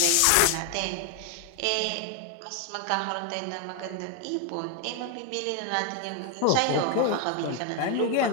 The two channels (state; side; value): different; both; correlation 0.01